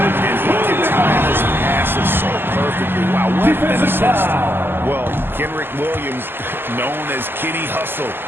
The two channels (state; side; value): late; left; 0.10 ms